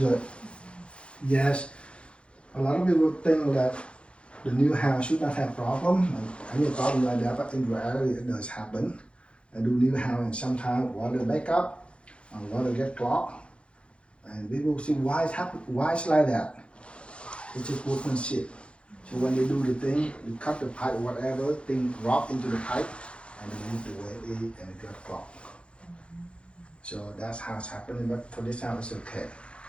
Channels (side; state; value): right; late; 0.059 ms